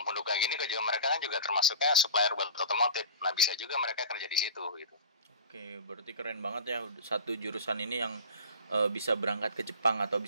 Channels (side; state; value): both; inverted; correlation -0.35